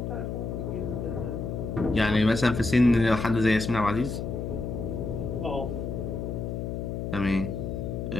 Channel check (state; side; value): noise; left; hum, 4 dB below the sound